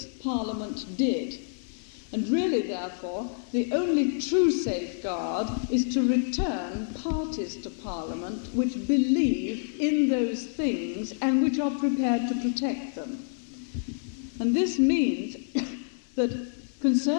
parliament did. And really, therefore, the only true safeguard is to return parties to Parliament which believe in those things and which are prepared to protect them. And this means that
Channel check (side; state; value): right; silent; 59 dB below the other